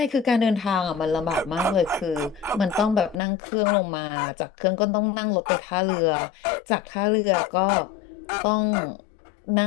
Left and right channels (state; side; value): drops out; right; at 3.2 s